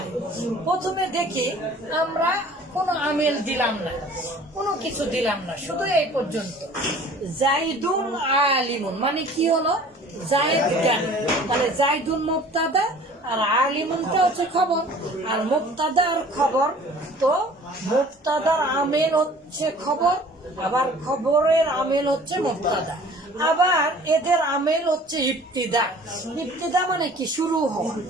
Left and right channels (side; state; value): both; normal; correlation 0.48